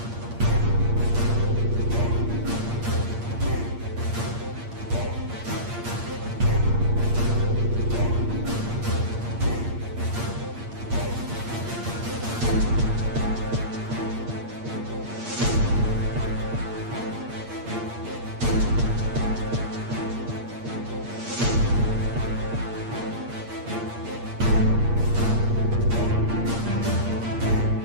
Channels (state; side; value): late; left; 8.6 ms